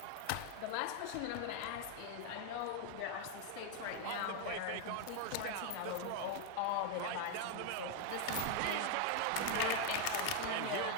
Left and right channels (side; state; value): both; different; correlation 0.01